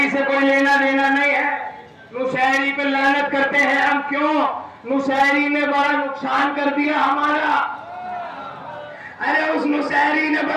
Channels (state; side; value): identical; both; correlation 1.00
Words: سے کوئی لینا دینا نہیں ہے. نصیری پہ لعنت کرتے ہیں ہم, کیوں؟ نصیری نے بڑا نقصان کر دیا ہمارا. ارے اس نصیری نے